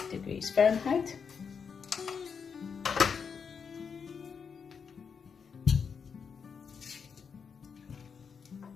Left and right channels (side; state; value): right; quieter; 6.2 dB